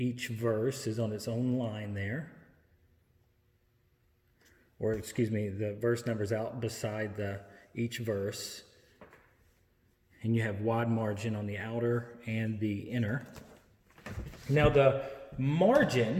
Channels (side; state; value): both; identical; correlation 1.00